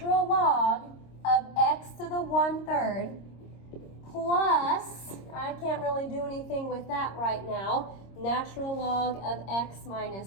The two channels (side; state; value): right; late; 26 ms